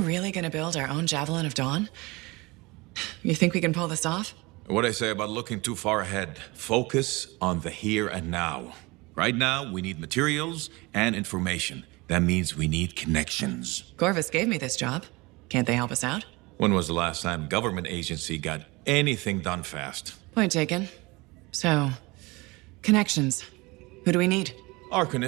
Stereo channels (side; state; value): left; quieter; 24.0 dB